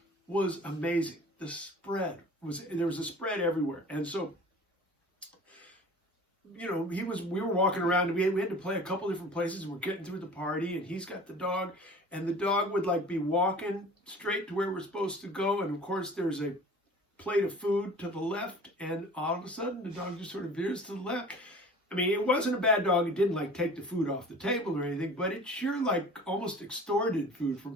was amazing. The spread there was a spread everywhere. And so, you know, we were walking around, and we had to play a couple different places, and we're getting through the party, and he's got the dog, and the dog would like be walking straight to where we're supposed to go, and of course there's a plate of food to the left, and all of a sudden the dog just sort of veers to the left. I mean, it wasn't a bad dog. It didn't like take the food off the table or anything, but it sure like almost extorted food from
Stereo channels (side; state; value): both; normal; correlation 0.43